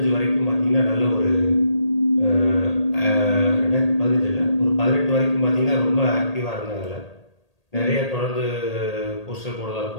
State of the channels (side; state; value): right; late; 1.8 ms